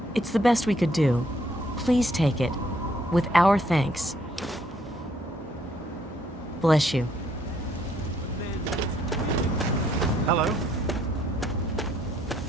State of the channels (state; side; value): normal; both; correlation 0.68